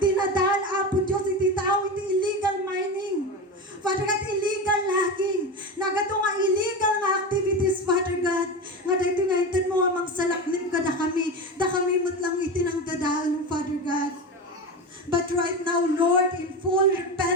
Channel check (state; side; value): normal; both; correlation 0.22